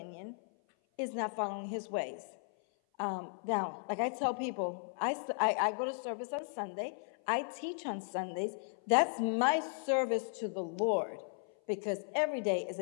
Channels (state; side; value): silent; right; 54 dB below the other